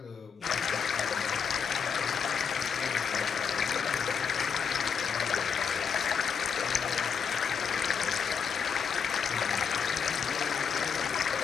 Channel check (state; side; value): quieter; right; 6.6 dB